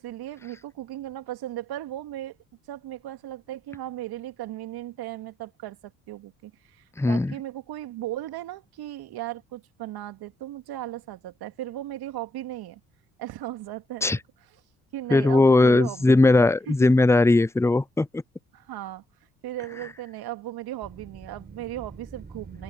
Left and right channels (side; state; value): both; normal; correlation 0.82